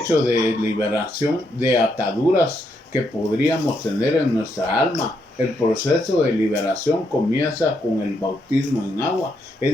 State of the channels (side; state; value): both; normal; correlation 0.78